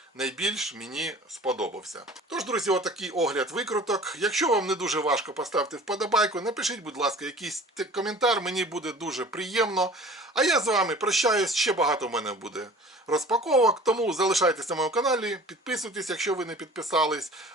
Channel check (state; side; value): normal; both; correlation 0.45